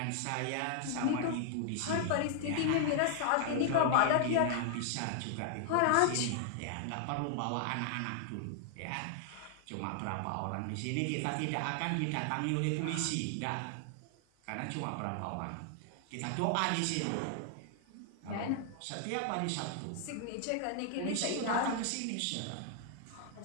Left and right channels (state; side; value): different; both; correlation 0.00